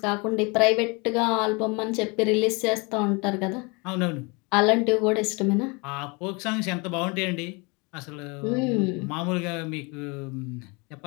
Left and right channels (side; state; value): right; quieter; 28.9 dB